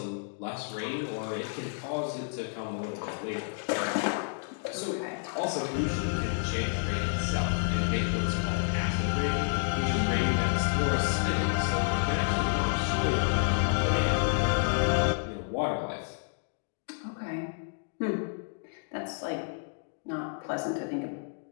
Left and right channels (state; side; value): silent; right; 58 dB below the other